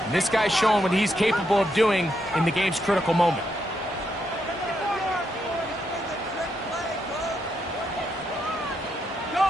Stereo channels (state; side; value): normal; both; correlation 0.80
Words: And this guy's showing what he's capable of doing in the game's critical moment.